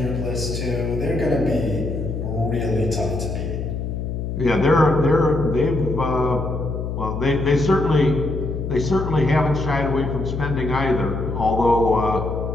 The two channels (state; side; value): noise; left; hum, 4 dB below the sound